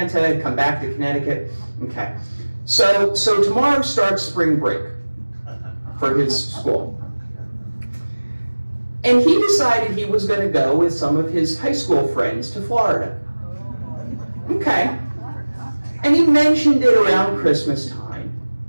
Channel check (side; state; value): both; inverted; correlation -1.00